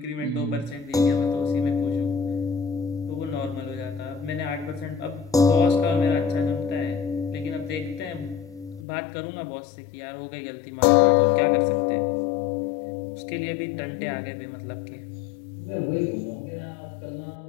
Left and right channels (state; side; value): drops out; right; at 8.8 s